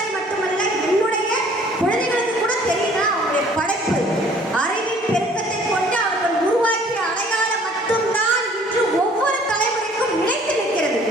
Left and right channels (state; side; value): normal; both; correlation 0.56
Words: மட்டுமல்ல என்னுடைய குழந்தைகளுக்கு கூட தெரியுதா அவங்களுடைய படைப்பு. அறிவின் பெருக்கத்தை கொண்டு அவர்கள் உருவாக்கிய அடையாளம் மட்டும்தான் இன்று ஒவ்வொரு தலைமுறைக்கும் நிலைத்து நிற்கிறது.